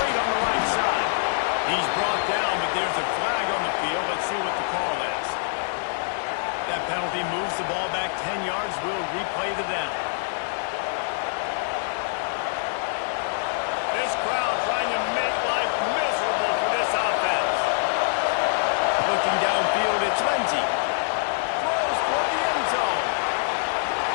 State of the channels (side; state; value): right; silent; digital silence